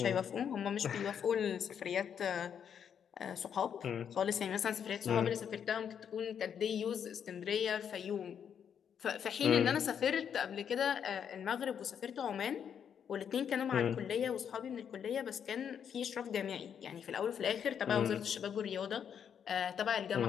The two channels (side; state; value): right; quieter; 8.1 dB